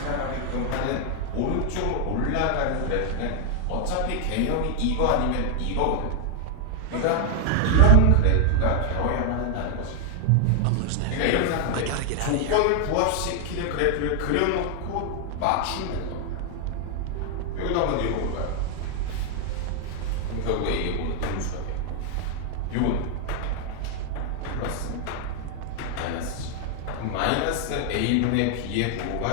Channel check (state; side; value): different; both; correlation 0.00